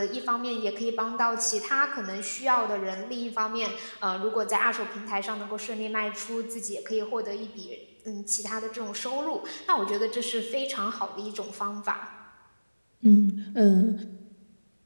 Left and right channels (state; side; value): inverted; both; correlation -1.00